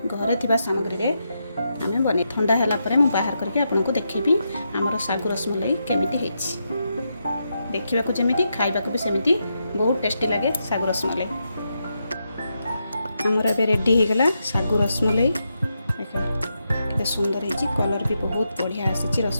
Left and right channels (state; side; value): inverted; both; correlation -0.84